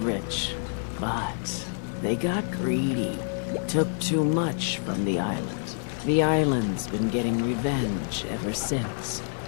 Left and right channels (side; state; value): right; silent; digital silence